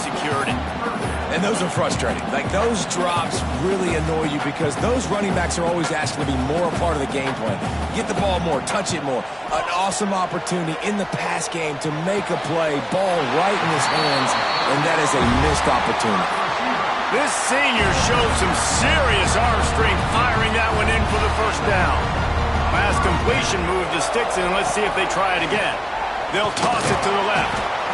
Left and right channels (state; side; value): identical; both; correlation 1.00